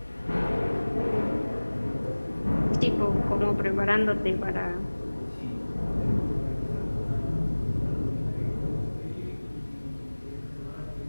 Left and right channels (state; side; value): inverted; both; correlation -1.00